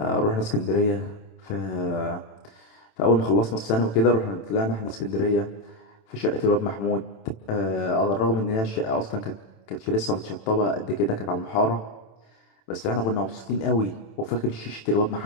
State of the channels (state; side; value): late; right; 27 ms